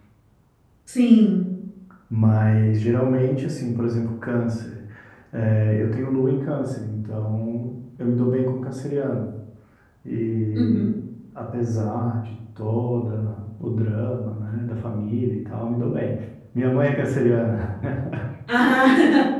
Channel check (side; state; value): both; identical; correlation 1.00